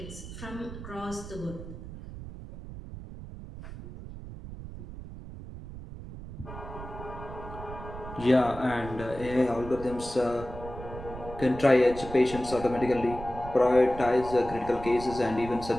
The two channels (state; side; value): noise; right; rumble, 12 dB below the sound